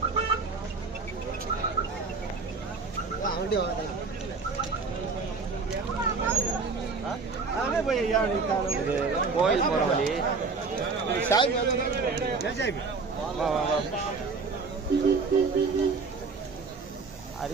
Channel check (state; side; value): quieter; left; 4.5 dB